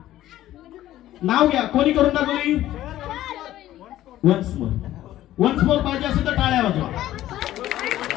नाव घ्या. कोणी करून दाखवली. वन्स मोर पाहिजे असेल तर टाळ्या वाजवा.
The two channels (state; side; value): quieter; right; 13.9 dB